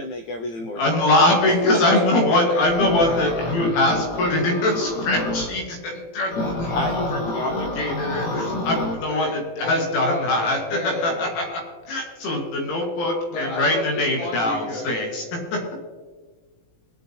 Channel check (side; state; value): right; late; 18 ms